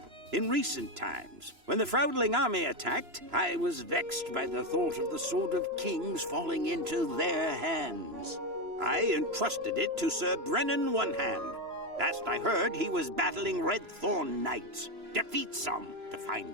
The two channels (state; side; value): late; left; 3.0 ms